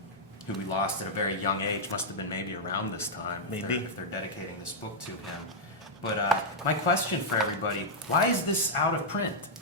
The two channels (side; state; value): both; normal; correlation -0.05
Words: who we lost at a very young age. Must have been maybe around this time. Maybe. If they're dedicating this book to him. But my question for everybody: why is this out of print?